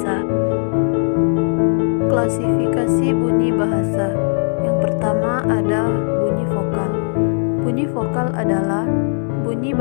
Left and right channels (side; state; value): right; silent; 67 dB below the other